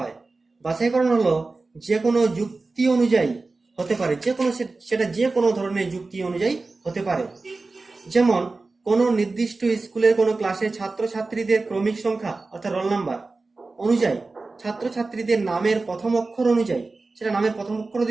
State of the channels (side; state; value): left; quieter; 3.6 dB